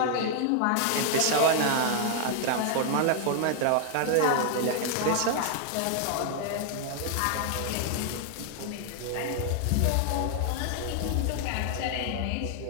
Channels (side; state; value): both; different; correlation -0.01